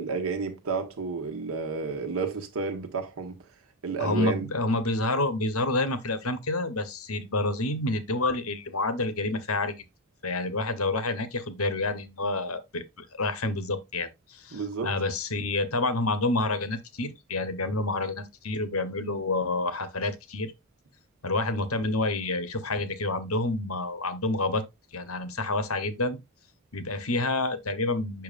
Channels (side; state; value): both; normal; correlation -0.02